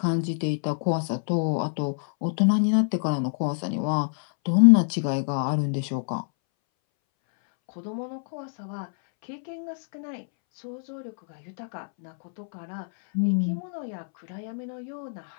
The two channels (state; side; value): silent; right; 61 dB below the other